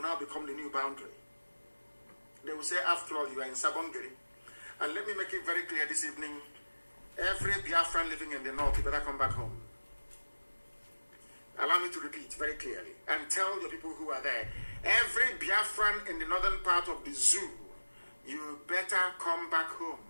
now become the new boundary. They will say, after all, you are in Sabongeri. And let me make it very clear this evening, every Biafran living in the north, you better come back home. Allow me to repeat very clearly and tell the people who are there, every Biafran in the northern part of the zoo, you better come back home.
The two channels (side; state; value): both; inverted; correlation -1.00